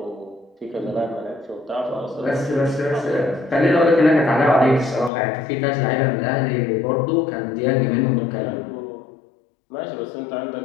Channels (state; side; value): drops out; right; at 5.1 s